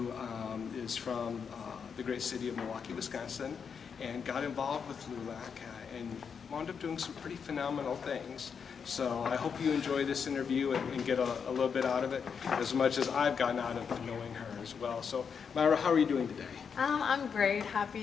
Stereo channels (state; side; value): quieter; right; 6.5 dB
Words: is from the great city of Milwaukee, Wisconsin, and got involved with LULAC and wound up doing some pretty phenomenal things. So I hope you enjoy this interview and get a little bit out of it, as much as I've gotten out of knowing her as well. So Mayra, how are you doing today? I'm great.